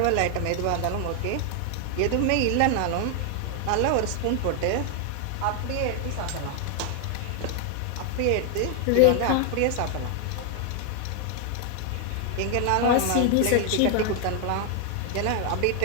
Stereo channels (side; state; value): both; different; correlation 0.00